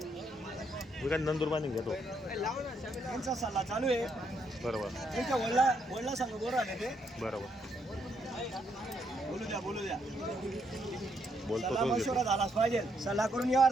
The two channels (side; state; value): both; normal; correlation 0.75